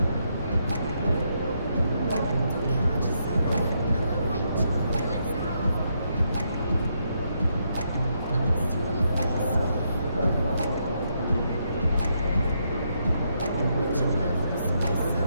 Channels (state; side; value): inverted; both; correlation -0.78